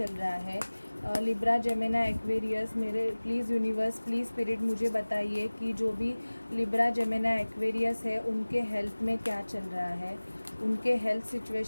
रहा है। लिब्रा जेमिनी एक्वेरियस मेरे प्लीज़ यूनिवर्स प्लीज़ स्पिरिट मुझे बताइए कि जो भी लिब्रा जेमिनी एक्वेरियस है उनके हेल्थ में क्या चल रहा है, उनके हेल्थ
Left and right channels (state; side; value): inverted; both; correlation -1.00